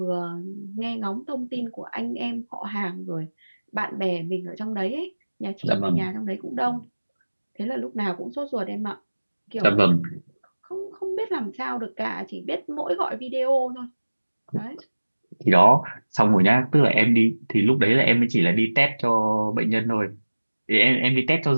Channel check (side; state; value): both; inverted; correlation -1.00